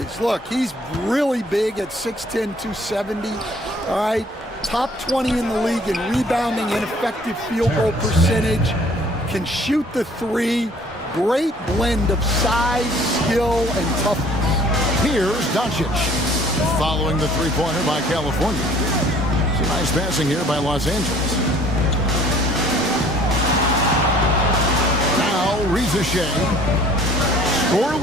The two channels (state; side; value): normal; both; correlation 0.55